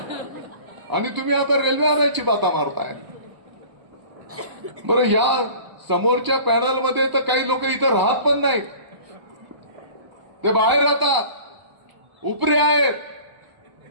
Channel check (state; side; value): late; left; 1.0 ms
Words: आणि तुम्ही आता रेल्वे आणायची बाता मारताय. बरं, या समोरच्या पॅनलमध्ये तर काही लोक इथं राहत पण नाही, ते बाहेर राहतात, उपरे आहेत